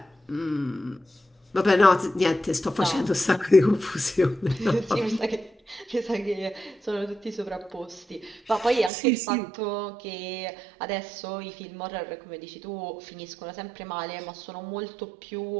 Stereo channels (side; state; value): left; drops out; at 8.9 s